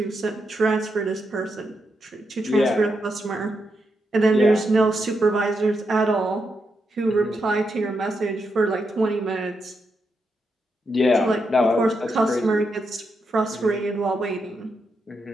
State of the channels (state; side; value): normal; both; correlation 0.83